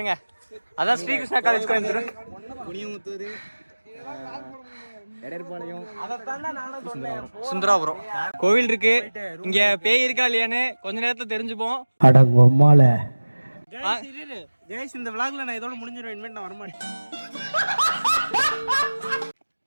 அதான் ஸ்ரீகிருஷ்ணா காலேஜ் கோயம்புத்தூர். குனியமுத்தூர், எடர்பாளையம், சுந்தராபுரம் கோவில் இருக்கு. இங்க பேய் இருக்கா இல்லையான்னு கொஞ்ச நேரத்துல தெரிஞ்சுப்போம். ஜெயஸ், இந்த விளாக்ல நான் இதோட முடிஞ்சிருவேன். இனிமேல் நான் வரமாட்டேன்.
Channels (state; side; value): inverted; both; correlation -1.00